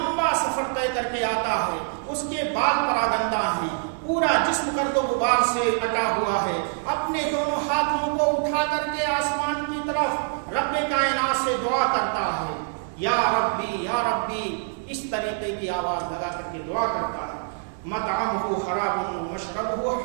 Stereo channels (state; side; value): silent; left; digital silence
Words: سفر طے کر کے آتا ہے، اس کے بال پراگندہ ہیں، پورا جسم گرد و غبار سے اٹا ہوا ہے، اپنے دونوں ہاتھوں کو اٹھا کر کے آسمان کی طرف رب کائنات سے دعا کرتا ہے، یا ربی یا ربی، اس طریقے کی آواز لگا کر کے دعا کرتا ہے۔ مطعمہ حرام ومشربہ